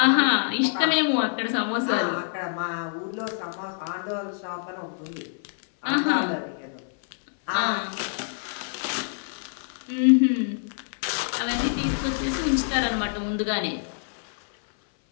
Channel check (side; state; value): right; silent; 57 dB below the other